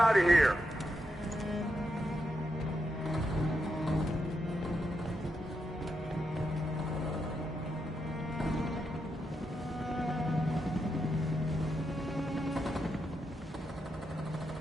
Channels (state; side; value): normal; both; correlation 0.84